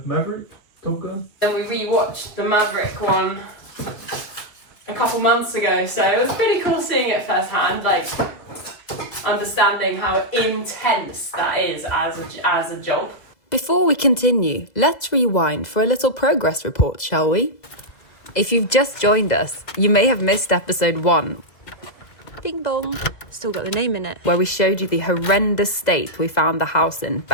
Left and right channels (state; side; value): late; right; 2.0 ms